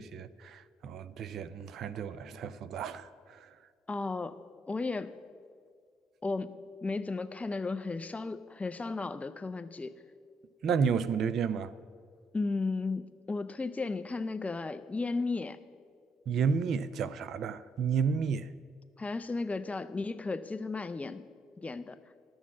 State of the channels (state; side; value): normal; both; correlation 0.76